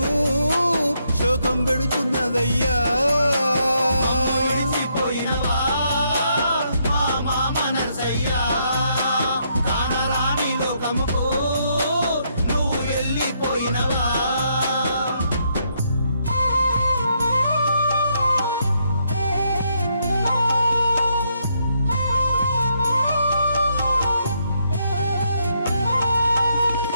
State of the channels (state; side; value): inverted; both; correlation -0.75